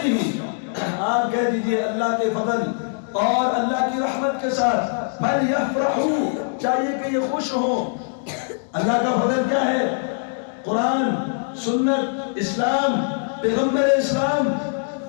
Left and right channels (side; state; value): right; silent; digital silence